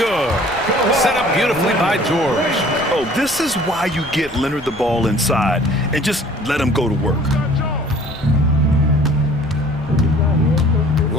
Set up beautifully by George. Oh, this is why you get Leonard the ball inside and just let him go to work.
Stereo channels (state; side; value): noise; left; rumble, 20 dB below the sound